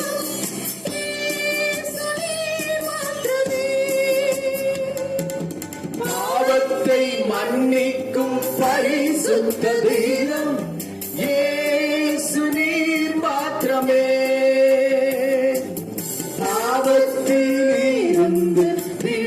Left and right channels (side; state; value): both; identical; correlation 1.00